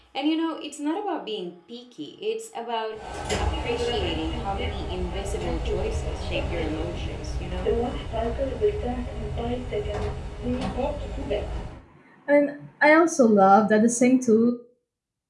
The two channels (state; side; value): identical; both; correlation 1.00